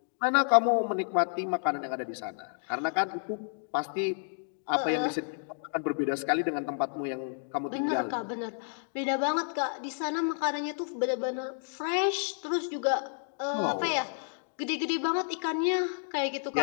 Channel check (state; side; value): silent; right; digital silence